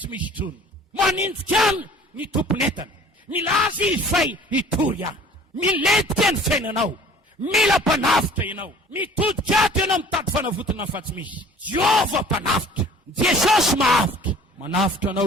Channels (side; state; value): both; normal; correlation 0.49